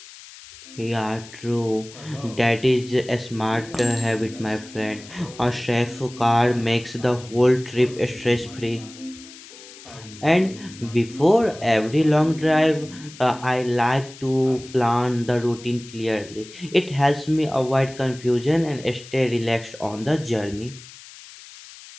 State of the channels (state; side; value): noise; left; hiss, 18 dB below the sound